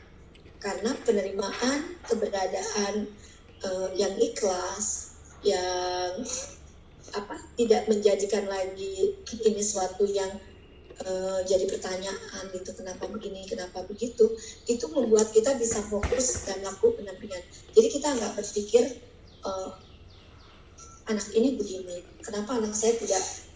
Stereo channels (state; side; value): identical; both; correlation 1.00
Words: Karena penerimaan keberadaan yang ikhlas, yang tidak menjadikan lagi ini suatu yang jadi pertanyaan gitu, kenapa begini, kenapa begitu, itu membuat kita bisa fokus dan melakukan pendampingan. Jadi kita nggak berpikir anak ini begini, kenapa anak saya